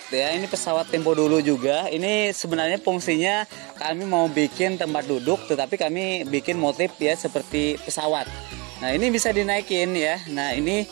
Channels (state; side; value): quieter; left; 28.9 dB